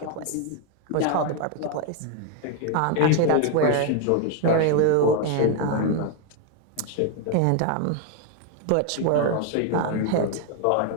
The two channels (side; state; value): both; different; correlation 0.01